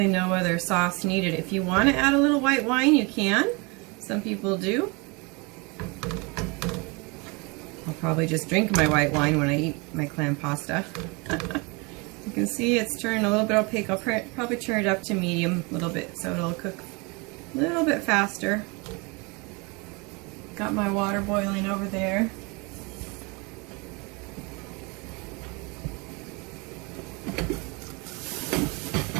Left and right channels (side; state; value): left; quieter; 28.8 dB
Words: no other sauce needed. If you want to add a little white wine, you can. Some people do. I'll probably just drink my white wine when I eat my clam pasta. You can see it's turned a little bit opaque. I'll probably turn it up to medium a little bit so it'll cook a little bit faster. Got my water boiling over there.